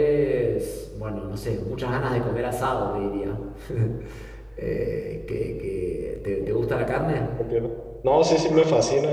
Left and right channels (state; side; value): identical; both; correlation 1.00